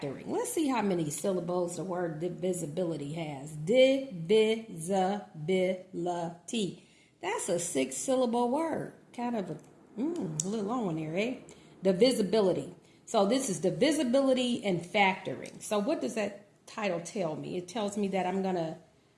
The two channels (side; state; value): both; identical; correlation 1.00